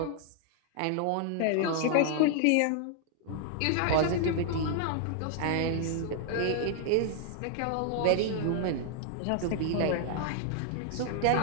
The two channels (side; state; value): both; different; correlation 0.00